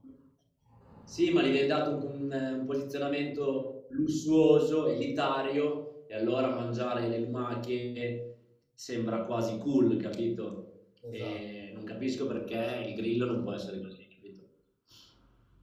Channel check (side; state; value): both; identical; correlation 1.00